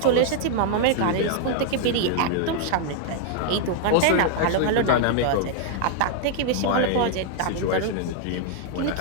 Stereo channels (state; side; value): different; both; correlation 0.00